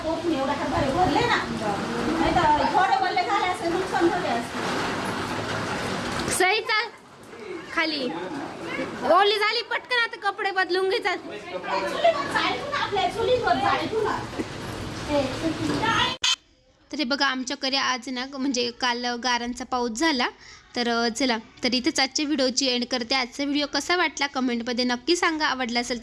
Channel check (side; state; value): both; identical; correlation 1.00